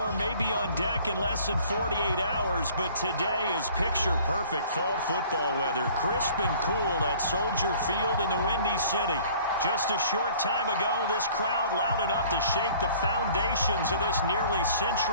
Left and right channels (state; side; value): inverted; both; correlation -0.52